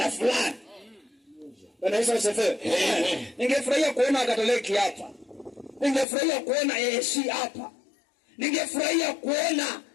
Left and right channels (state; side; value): drops out; right; at 6.1 s